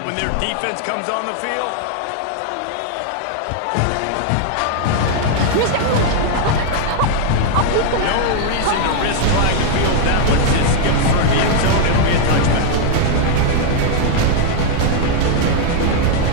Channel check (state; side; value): different; both; correlation 0.00